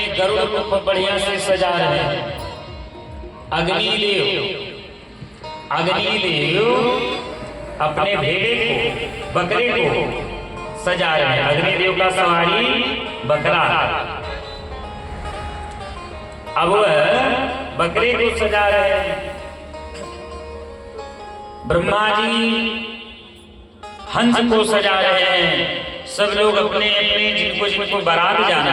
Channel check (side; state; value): both; identical; correlation 1.00